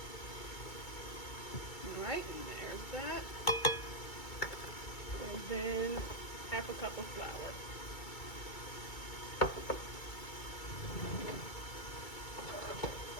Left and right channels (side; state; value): right; late; 2.3 ms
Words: All right, and there's that. And then 1/2 cup of flour.